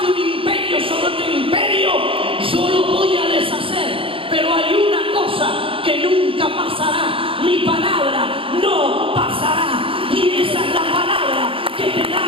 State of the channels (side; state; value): left; late; 0.26 ms